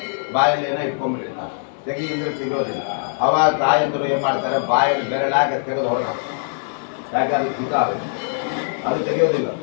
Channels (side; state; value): right; silent; 65 dB below the other